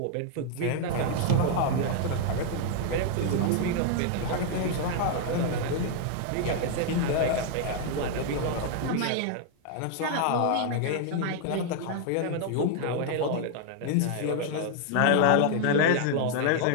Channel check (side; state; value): both; different; correlation 0.00